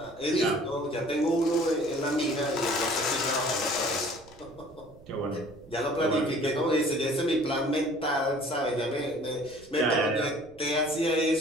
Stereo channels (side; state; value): right; noise; rumble, 23 dB below the sound